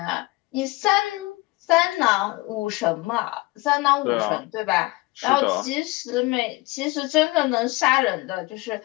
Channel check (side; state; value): right; quieter; 21.6 dB